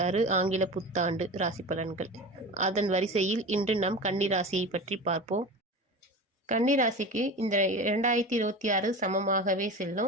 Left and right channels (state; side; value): normal; both; correlation 0.30